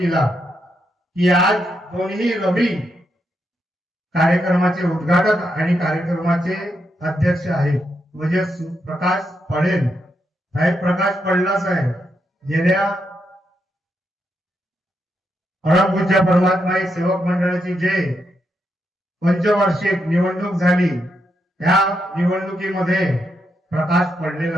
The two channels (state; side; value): normal; both; correlation 0.82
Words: की आज कोणीही रवी कार्यक्रमाचे उद्घाटक आणि कार्यक्रमाचे अध्यक्ष आहेत म्हणजे प्रकाश पडेल साहेब. प्रकाश पडला साहेब गेल्या परमपूज्य परमात्मा सेवक मंडळाची जे पंचवार्षिक निवडणूक झाली त्या निवडणुकीमध्ये प्रकाश